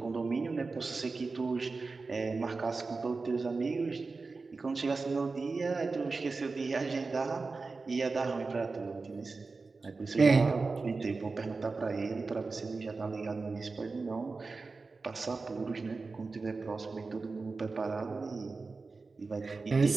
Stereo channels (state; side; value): quieter; left; 4.0 dB